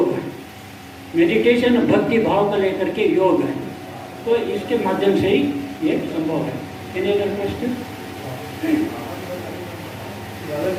है, मेडिटेशन भक्ति भाव को लेकर के योग है। तो इसके माध्यम से ही ये संभव है। क्वेश्चन,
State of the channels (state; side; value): identical; both; correlation 1.00